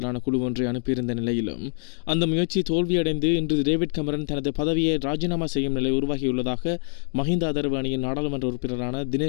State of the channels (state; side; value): silent; right; 61 dB below the other